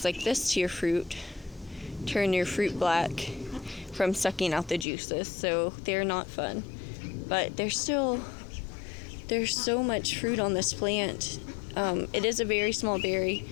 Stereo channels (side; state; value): right; drops out; at 4.9 s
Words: like this to your fruit, turn your fruit black from sucking out the juices, so they're not fun. But there's so much fruit on this plant. It is a very small berry.